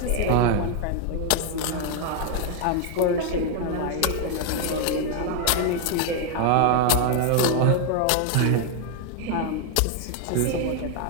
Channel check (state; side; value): different; both; correlation 0.00